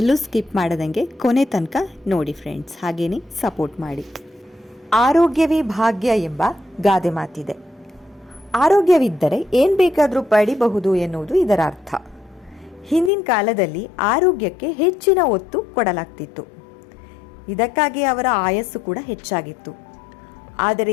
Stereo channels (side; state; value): right; drops out; at 13.1 s